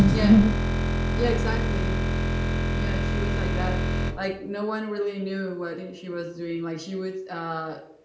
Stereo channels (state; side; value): identical; both; correlation 1.00